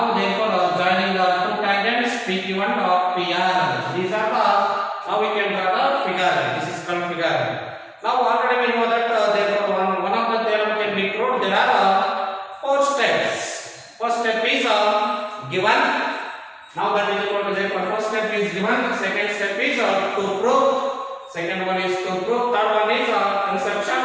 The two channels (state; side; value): identical; both; correlation 1.00